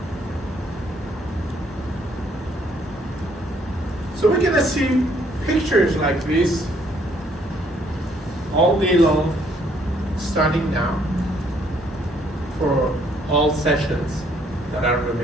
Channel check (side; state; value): both; normal; correlation 0.66